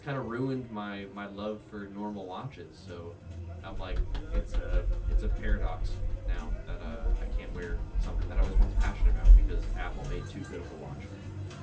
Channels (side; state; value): both; identical; correlation 1.00